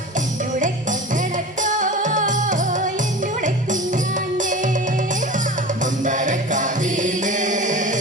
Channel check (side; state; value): both; normal; correlation 0.33